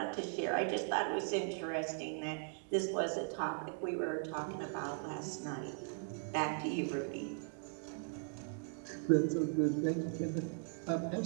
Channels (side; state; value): left; silent; 52 dB below the other